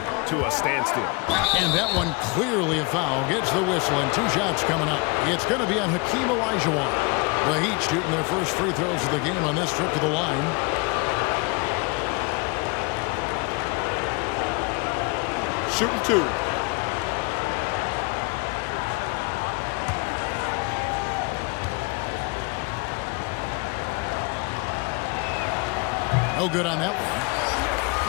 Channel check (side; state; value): right; quieter; 28.0 dB